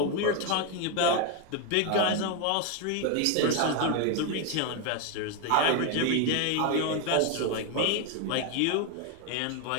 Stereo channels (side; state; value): both; different; correlation 0.01